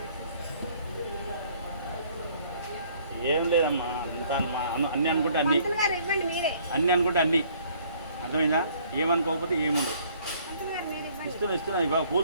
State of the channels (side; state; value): both; inverted; correlation -0.60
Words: ఏం లేదమ్మా, అంతా అన్నీ అనుకుంటే అన్నీ, పంతులు గారు ఇవ్వండి మీరే. అన్నీ అనుకుంటే అన్నీ. అర్థమైందా? ఏమనుకోకపోతే ఏముండదు. పంతులు గారు మీరు ఇవ్వండి. ఇస్తున్నా ఇవ్వ,